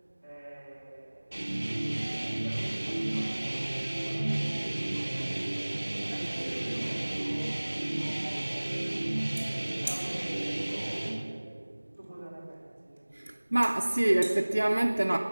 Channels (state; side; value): inverted; both; correlation -1.00